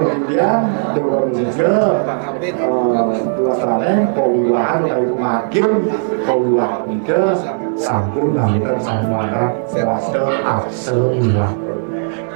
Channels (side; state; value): left; silent; digital silence